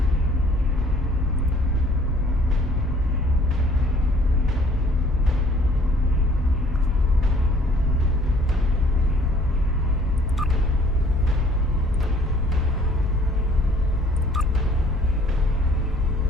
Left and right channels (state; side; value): normal; both; correlation 0.57